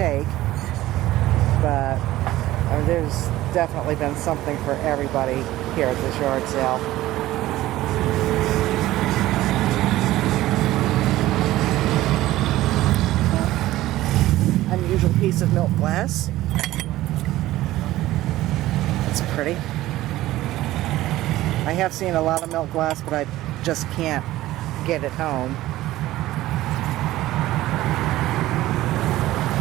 But there's definitely been something for everybody here at this yard sale. Unusual piece of milk glass. It's pretty. I have seen a lot of milk glass, but I just can't get it home.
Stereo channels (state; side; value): quieter; left; 15.9 dB